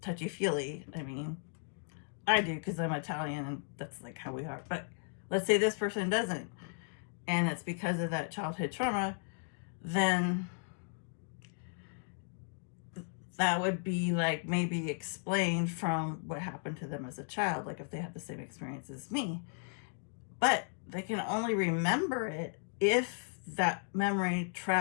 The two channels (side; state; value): right; silent; 54 dB below the other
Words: touchy-feely. I mean, I do because I'm Italian and that's like how we are. But let's say this person doesn't, and it's because of that childhood trauma, then that would be like maybe explained from what happened to them as a child, like if they had the same experience as me. But they can only remember it if that memory